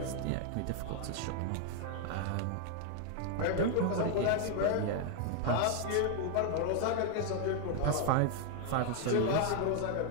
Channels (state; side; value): different; both; correlation 0.00